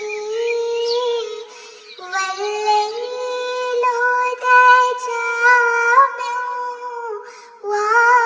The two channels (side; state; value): both; identical; correlation 1.00